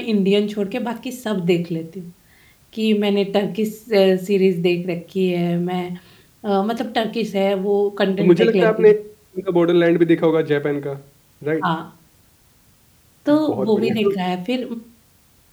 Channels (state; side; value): identical; both; correlation 1.00